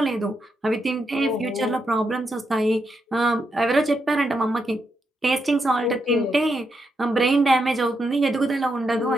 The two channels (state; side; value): normal; both; correlation 0.82